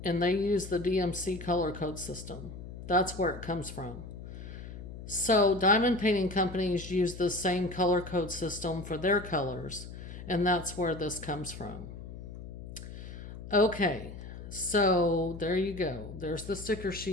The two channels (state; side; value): noise; left; hum, 11 dB below the sound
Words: and they use the DMC color code system. That's where it comes from. So diamond painting companies use the same color code system for their colors, and that's where this comes from. Okay, so there you go. There's the sticker